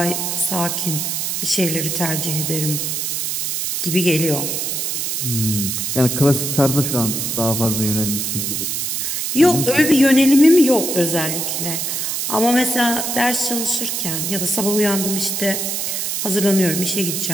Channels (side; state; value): right; noise; hiss, 1 dB below the sound